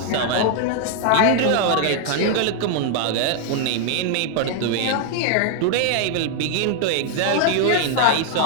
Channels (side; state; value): both; different; correlation 0.00